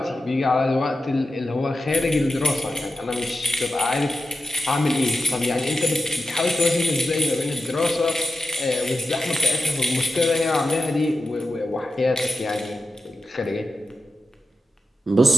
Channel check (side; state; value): both; normal; correlation 0.90